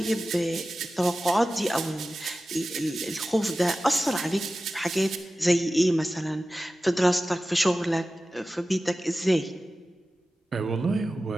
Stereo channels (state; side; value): normal; both; correlation 0.95